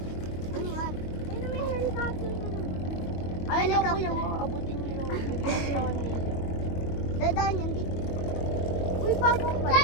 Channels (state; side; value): late; right; 22 ms